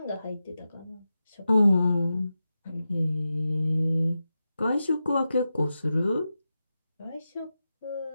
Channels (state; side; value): inverted; both; correlation -0.91